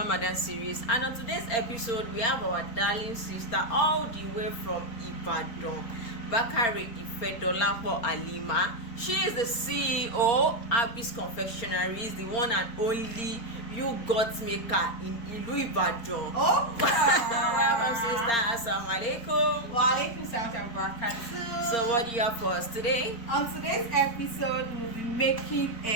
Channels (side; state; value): right; late; 4.3 ms